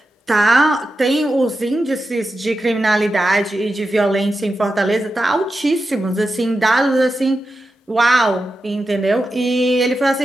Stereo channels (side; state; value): both; normal; correlation 0.90